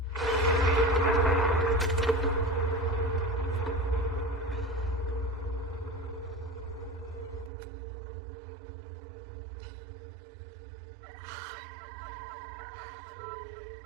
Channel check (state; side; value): drops out; left; at 7.5 s